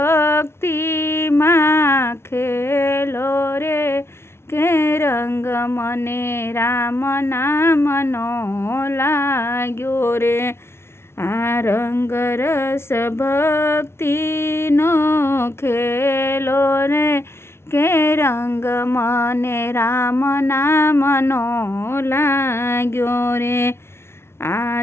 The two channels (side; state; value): right; late; 0.12 ms